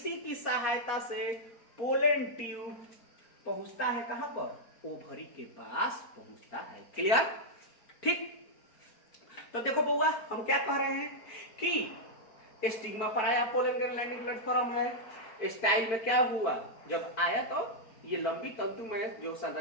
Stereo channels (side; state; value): right; late; 4.4 ms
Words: की सहायता से पोलन ट्यूब पहुंचता है कहां पर? ओवरी के पास पहुंचता है। क्लियर? ठीक। तो देखो बउआ, हम क्या कह रहे हैं कि स्टिग्मा पर आया, पोलन ग्रेन लैंडिंग प्लेटफॉर्म है। स्टाइल में क्या हुआ? जब आया तो ये लंबी तंतु में जो